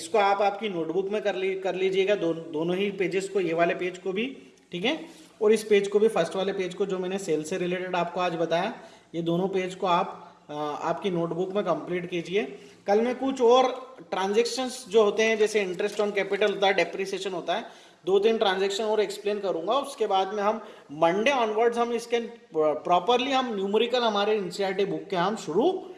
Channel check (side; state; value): both; identical; correlation 1.00